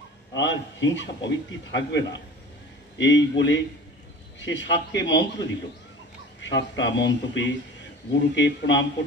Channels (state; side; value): normal; both; correlation 0.40